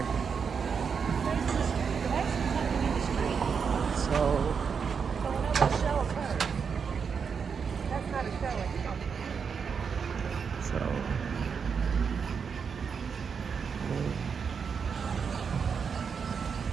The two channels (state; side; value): quieter; left; 6.2 dB